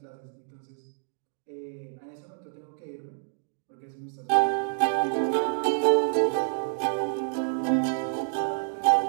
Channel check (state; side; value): silent; left; digital silence